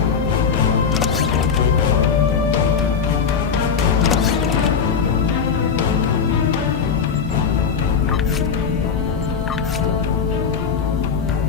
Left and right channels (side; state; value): right; quieter; 6.2 dB